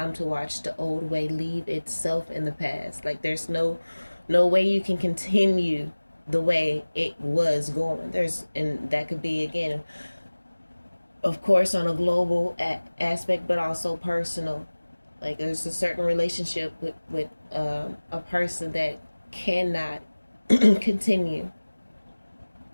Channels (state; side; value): inverted; both; correlation -1.00